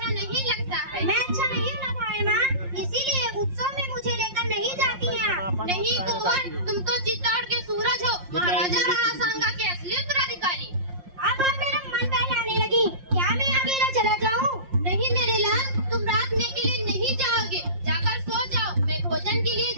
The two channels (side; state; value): left; late; 5.6 ms